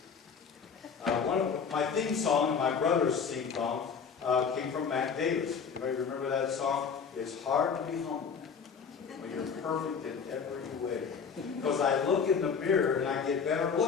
one of my theme song and my brother's theme song came from Mac Davis. Anybody remember that song? It's hard to be humble when you're perfect in every way. Because I look in the mirror and I get better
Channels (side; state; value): right; quieter; 6.2 dB